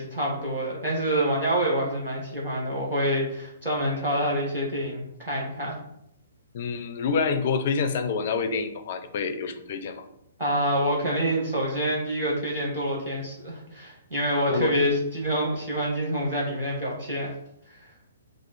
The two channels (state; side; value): inverted; both; correlation -0.48